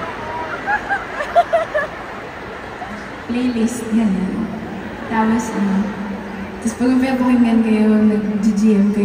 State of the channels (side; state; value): both; identical; correlation 1.00